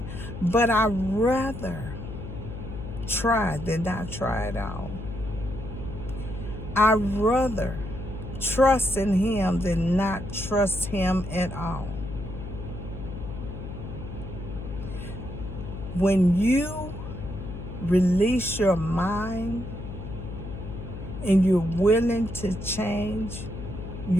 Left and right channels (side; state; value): left; noise; hum, 9 dB below the sound